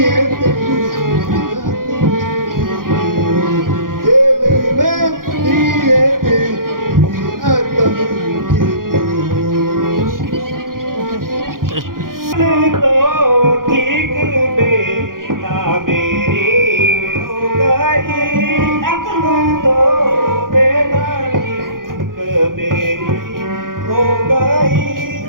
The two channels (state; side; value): late; left; 0.91 ms